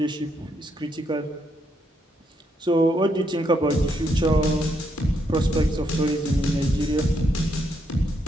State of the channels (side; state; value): both; normal; correlation 0.77